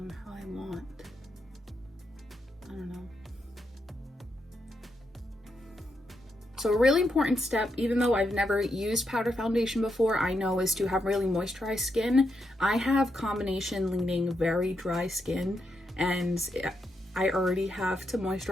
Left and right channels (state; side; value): normal; both; correlation 0.82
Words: how I want. I don't know. So a really important step, even though I've never used powder foundation before, I know is to have really moisturized skin. I have combination leaning very dry skin and I already have to